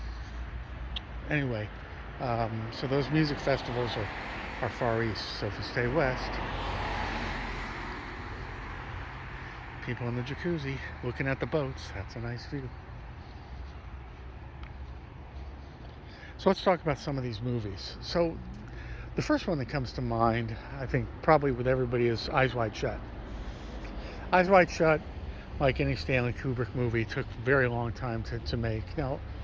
Anyway, so those music festivals are far east. So if you stay west, people in the jacuzzi looking at the boats, that's a nice view. So let's talk about some of these movies. So the first one that comes to mind, I think probably with everybody, is Eyes Wide Shut. Eyes Wide Shut, like any Stanley Kubrick movie, took a very long time to make. Now,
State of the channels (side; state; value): both; identical; correlation 1.00